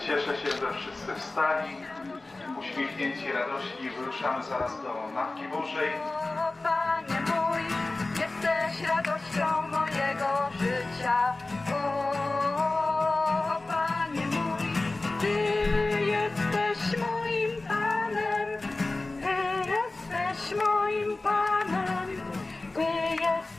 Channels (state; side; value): quieter; right; 3.1 dB